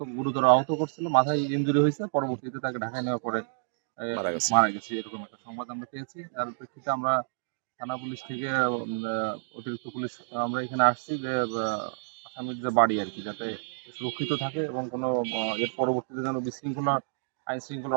গুরুতর আহত করছিল, মাথায় ইনজুরি হয়েছে, পরবর্তীতে তাকে ঢাকায় নেওয়ার পরে মারা গেছে, এরকম একটা সংবাদ আমরা পেয়েছি। তার প্রেক্ষিতে আমরা থানা পুলিশ থেকে অতিরিক্ত পুলিশ আমরা এখানে আসছি যে আসামির যে বাড়ি আর কি, যাতে সুরক্ষিত থাকে এবং কোনো এর পরবর্তীতে যেন আইন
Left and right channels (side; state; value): left; silent; digital silence